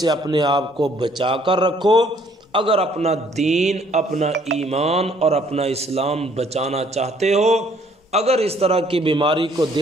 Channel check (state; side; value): normal; both; correlation 0.62